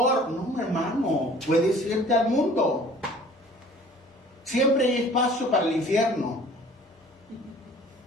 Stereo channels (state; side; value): normal; both; correlation 0.50